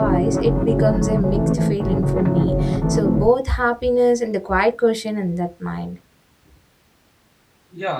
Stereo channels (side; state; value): both; identical; correlation 1.00